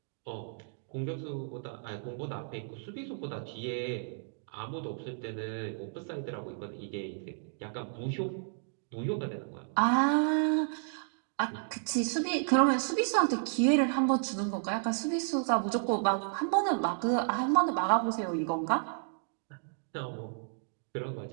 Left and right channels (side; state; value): left; silent; digital silence